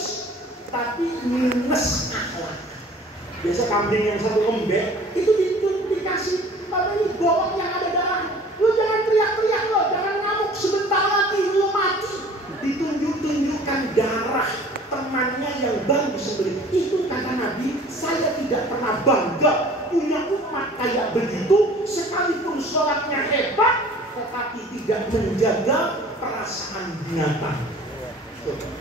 tapi minus akhlak. Biasa kambing yang satu lembek itu dikasih apa ini bawang yang ada darah. Lu jangan teriak-teriak lo, jangan ngamuk, sebentar lagi lu mati. Ditunjuk-tunjukkan darah temannya yang baru disembelih. Itu kata Nabi, saya tidak pernah bangga punya umat kayak begitu, sekalipun sholatnya hebat, tetapi tidak menjaga perasaan binatang.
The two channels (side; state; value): both; normal; correlation 0.48